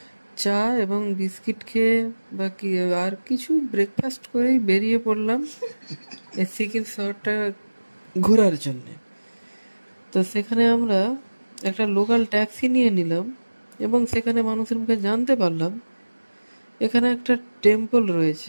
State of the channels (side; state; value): both; inverted; correlation -1.00